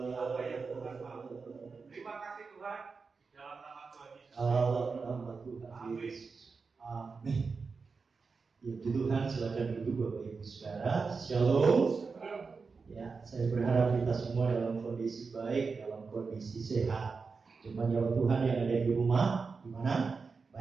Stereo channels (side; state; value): left; quieter; 4.8 dB